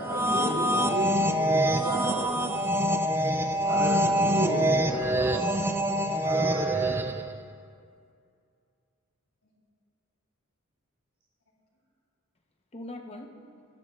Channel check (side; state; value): both; normal; correlation 0.55